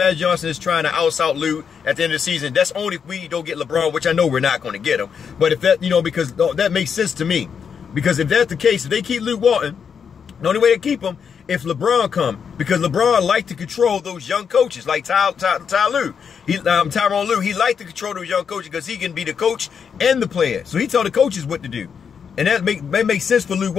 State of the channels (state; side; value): quieter; right; 6.8 dB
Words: Johnson is trying to out Luke at the end of the season? That's only if we don't get LeBron, which I know we're not going to get him. But if that, you know, because that makes sense to me. Because if that's the case, if they keep Luke Walton, the only way to keep him, if LeBron come, because LeBron like to control those young coaches, like Tyronn Lue. He like to control those young coaches because he can be the coach and the player. So he tell the coaches what to do. And that makes sense for Luke